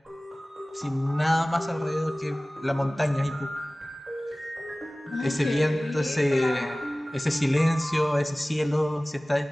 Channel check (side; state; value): both; normal; correlation 0.98